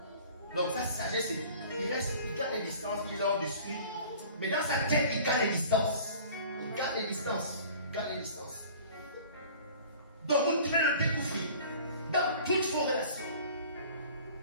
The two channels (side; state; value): both; inverted; correlation -0.46